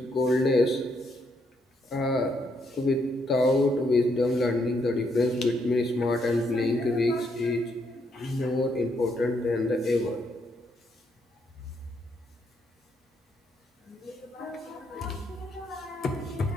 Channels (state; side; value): normal; both; correlation 0.75